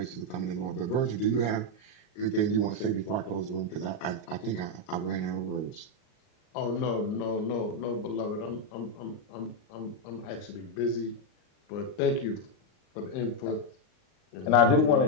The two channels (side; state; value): right; late; 38 ms